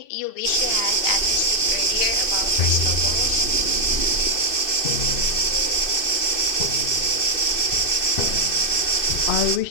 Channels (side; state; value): right; late; 2.6 ms